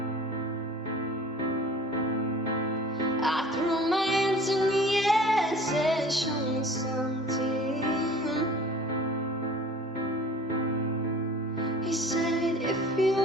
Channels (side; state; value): both; normal; correlation 0.46